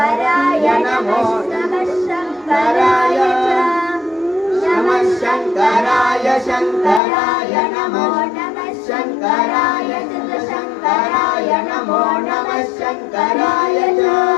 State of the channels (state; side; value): drops out; right; at 7.0 s